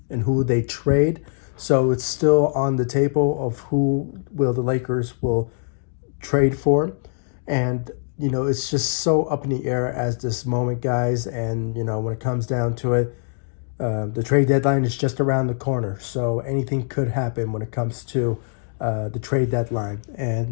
and who they trade. So it's still on the table of who the Lakers will trade for. And it's just so up in the air as this moment, guys. And when it comes down to it, the trade deadline is just around the corner, so anything could happen when it comes to the trade deadline.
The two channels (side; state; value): right; silent; digital silence